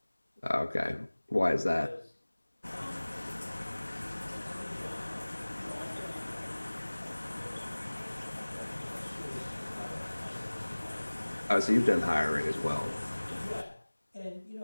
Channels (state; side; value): inverted; both; correlation -1.00